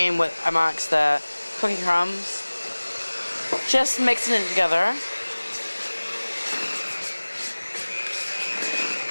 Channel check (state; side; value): inverted; both; correlation -1.00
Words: with amongst the cookie crumbs, just mixing it together.